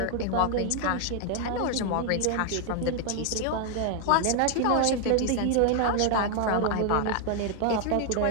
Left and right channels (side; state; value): both; different; correlation 0.00